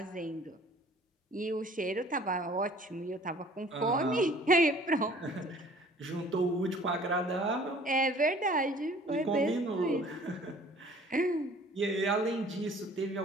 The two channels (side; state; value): both; normal; correlation 0.52